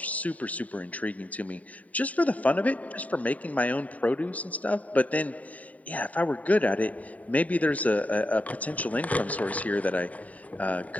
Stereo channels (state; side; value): late; right; 0.070 ms